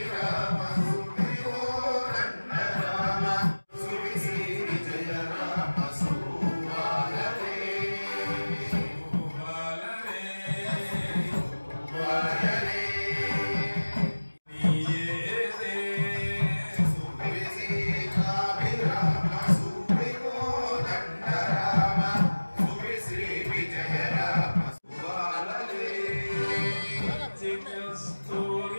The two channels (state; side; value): inverted; both; correlation -1.00